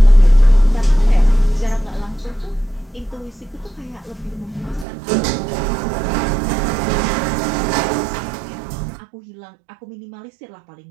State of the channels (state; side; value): drops out; left; at 4.9 s